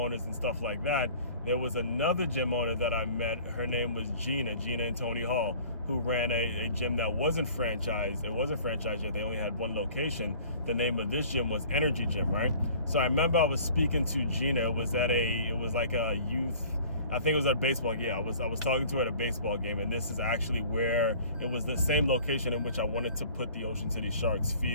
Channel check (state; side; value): inverted; both; correlation -0.48